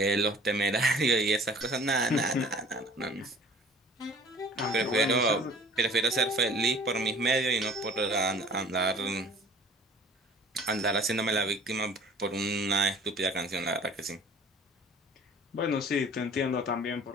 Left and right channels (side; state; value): both; normal; correlation 0.49